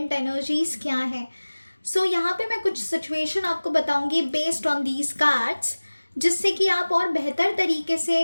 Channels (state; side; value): inverted; both; correlation -1.00